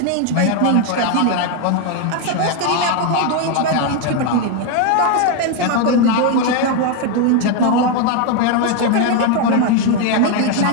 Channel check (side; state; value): both; different; correlation 0.01